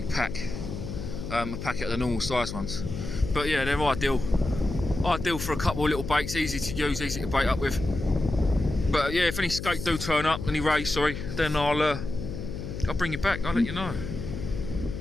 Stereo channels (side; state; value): left; noise; hum, 7 dB below the sound